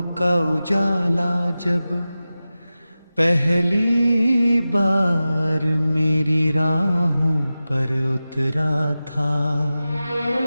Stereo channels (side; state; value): both; inverted; correlation -0.95